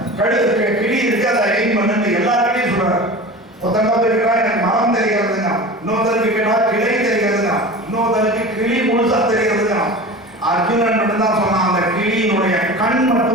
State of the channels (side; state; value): both; normal; correlation 0.34